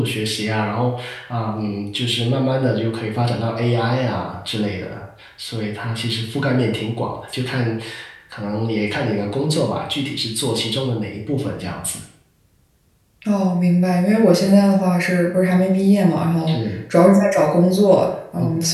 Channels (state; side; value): identical; both; correlation 1.00